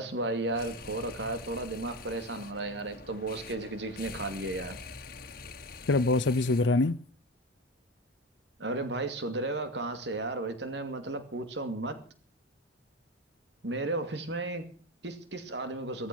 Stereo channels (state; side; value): normal; both; correlation 0.23